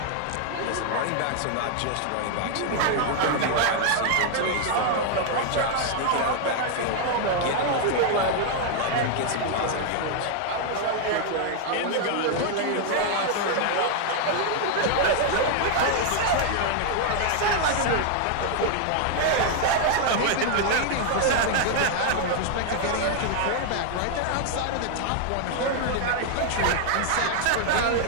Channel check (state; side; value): different; both; correlation 0.00